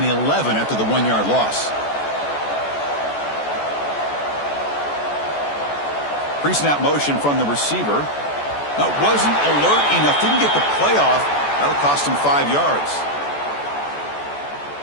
11 after the 1-yard loss. Pre-snap motion from the receiver. That wasn't alert enough. Didn't get the play off. That'll cost him 5 yards.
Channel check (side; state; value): right; late; 14 ms